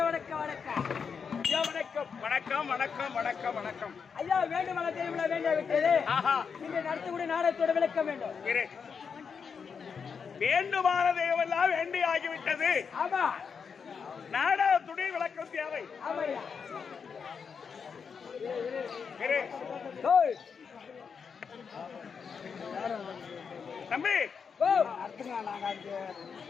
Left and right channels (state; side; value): quieter; right; 6.1 dB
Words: வணக்கம் ஐயா வேண்டும் வேண்டிய விட்டது நீங்க நடத்தக்கூடிய நாடகத்தோட விளக்கம் வேண்டும் வேண்டுமானதையெல்லாம் வேண்டி ஆகிவிட்டது ஆமா நாடகத்துடைய விளக்கம் தேவை தம்பி